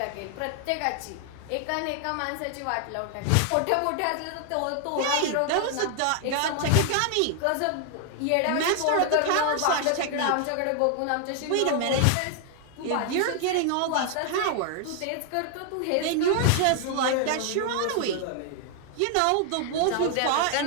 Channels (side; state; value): both; different; correlation 0.00